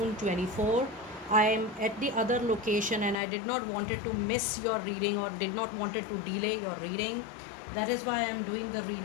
24. I am at the other location and I did not wanted to miss your reading or did not wanted to delay your reading. That is why I am doing the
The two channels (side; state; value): right; drops out; at 3.2 s